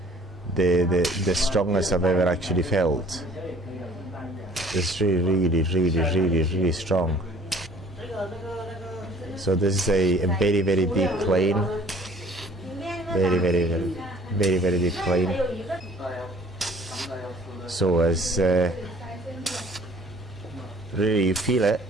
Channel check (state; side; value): normal; both; correlation 0.54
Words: strongest I've ever actually felt. It's really strong. So this is a very, very deep plane. Very deep plane. So as really you feel it,